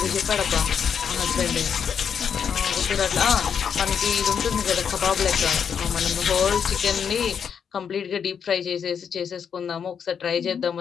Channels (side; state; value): right; quieter; 7.3 dB